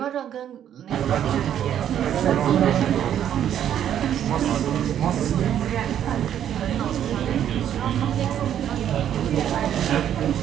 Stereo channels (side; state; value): left; quieter; 10.1 dB